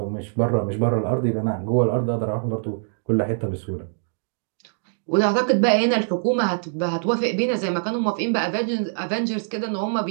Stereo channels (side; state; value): left; silent; digital silence